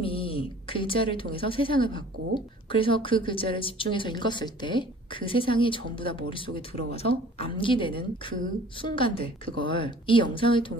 글자를 통해서 세상을 봤고 그래서 그 글자를 집중해서 읽었을 때 그 세상이 전부 다 머릿속에 들어와서 암기되는 그 순간들, 그걸 이 영상을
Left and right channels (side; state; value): both; normal; correlation 0.49